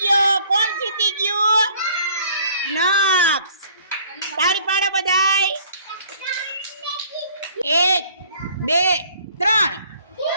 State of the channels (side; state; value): both; inverted; correlation -0.57